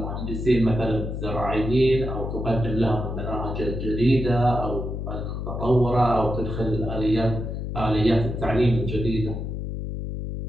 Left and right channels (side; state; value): left; noise; hum, 5 dB below the sound